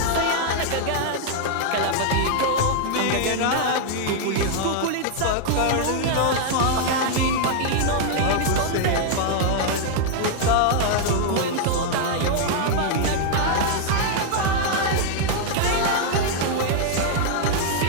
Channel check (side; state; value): both; different; correlation 0.00